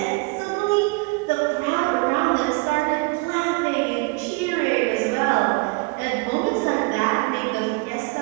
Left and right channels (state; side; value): quieter; left; 28.6 dB